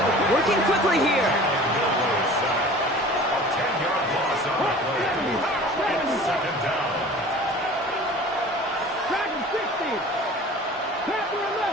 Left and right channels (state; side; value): normal; both; correlation 0.43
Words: Working quickly here. A 10-yard loss on the play. It's 2nd down. Dragon 60. Panther